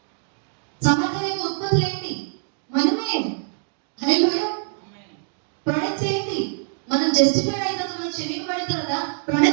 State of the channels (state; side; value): silent; left; digital silence